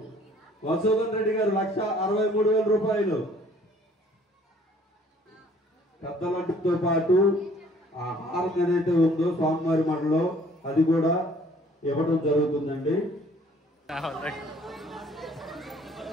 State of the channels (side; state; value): both; normal; correlation 0.57